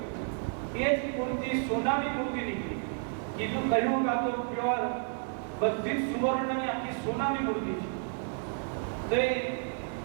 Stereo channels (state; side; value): silent; left; 57 dB below the other